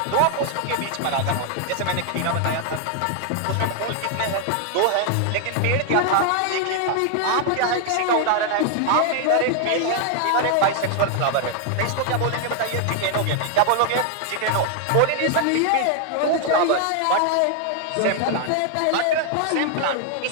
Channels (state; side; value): different; both; correlation 0.00